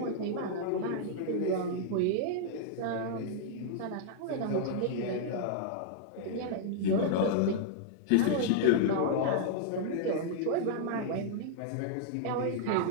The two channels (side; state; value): both; different; correlation -0.01